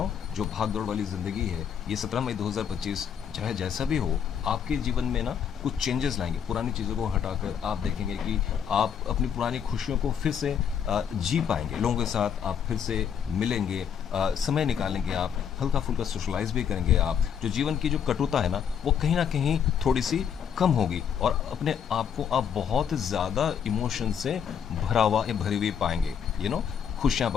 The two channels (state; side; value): quieter; right; 7.9 dB